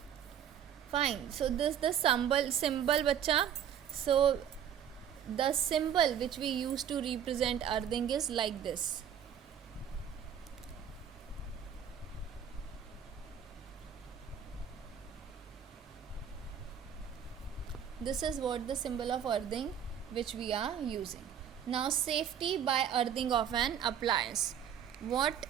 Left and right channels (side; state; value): left; quieter; 9.0 dB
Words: Fine. So this the symbol bacha. So the symbol which we use to represent earthing is like this. This is what the symbol of earthing which we are using. Now safety by earthing of an appliance. What